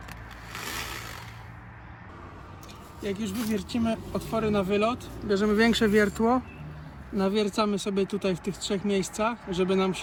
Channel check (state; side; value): identical; both; correlation 1.00